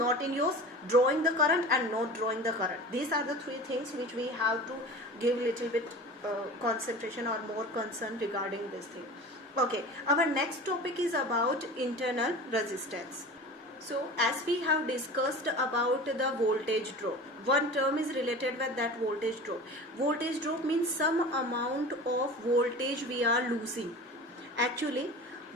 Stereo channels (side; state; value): both; normal; correlation 0.36